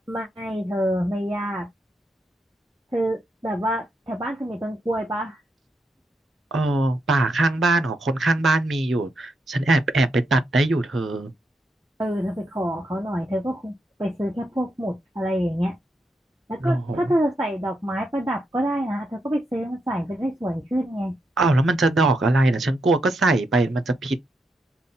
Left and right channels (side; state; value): both; normal; correlation 0.82